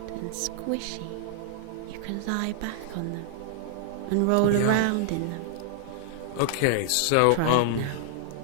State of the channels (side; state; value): both; different; correlation -0.01